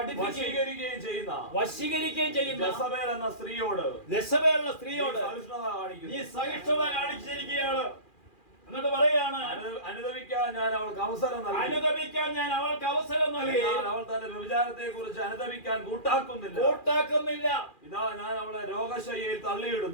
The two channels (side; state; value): right; late; 2.4 ms